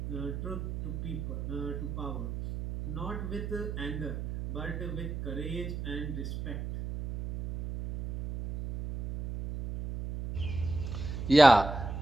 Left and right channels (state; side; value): noise; right; hum, 5 dB below the sound